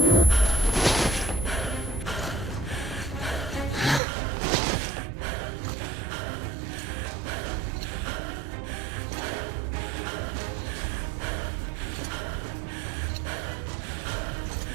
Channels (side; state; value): left; drops out; at 4.0 s